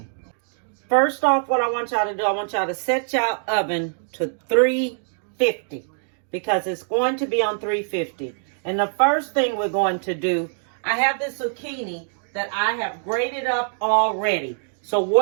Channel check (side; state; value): left; silent; digital silence